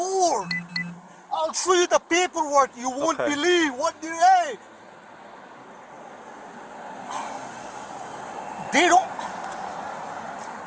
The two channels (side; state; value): both; identical; correlation 1.00